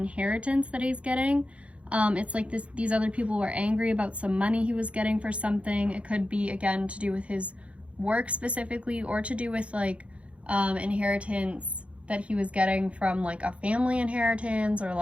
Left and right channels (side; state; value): left; late; 0.062 ms